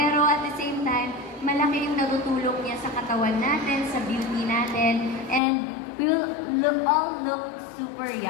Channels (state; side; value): drops out; right; at 5.4 s